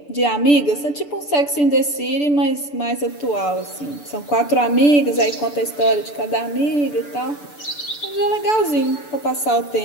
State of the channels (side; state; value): right; late; 6.9 ms